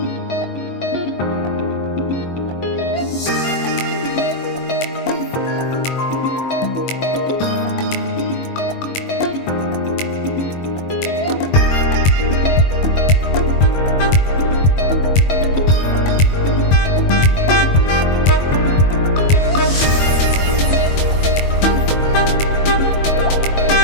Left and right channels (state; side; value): late; right; 22 ms